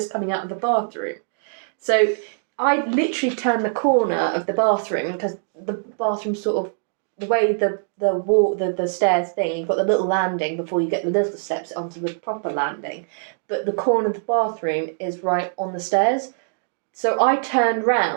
coming out of the bathroom. So I literally turned the corner of the bathroom because the bathroom sort of, the way the stairs thing, you've got the little landing before you get the little steps onto the proper landing, but the corner of the bathroom is right on the stairs. So I turned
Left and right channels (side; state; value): left; silent; digital silence